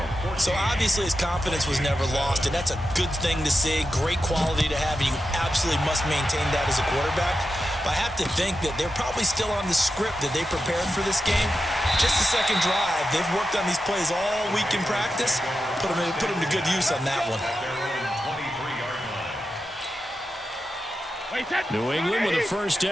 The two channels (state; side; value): normal; both; correlation 0.90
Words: So obviously his confidence was never lost, and that's a good thing to see. Great quality to have. You absolutely must maintain that as a quarterback. But I have to think that they're probably still on the script that they prepared for this game. Just the second drive. They've worked on these plays all week in practice. Put them to good use on that one. New England with a first